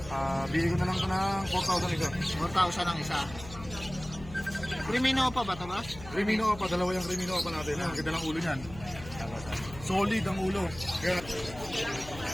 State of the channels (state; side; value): noise; left; hum, 15 dB below the sound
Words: Bigay ko na lang ito ng 4,000 isa. 4,000 ang isa. Crimino pa ba ito, boss? Crimino pa, dalawa yung Crimino pa natin. Ang ganda ng ulo niyan. Solid ang ulo. Kaya,